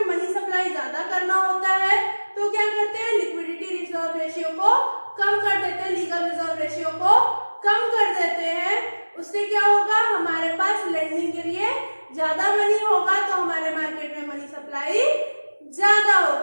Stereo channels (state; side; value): inverted; both; correlation -1.00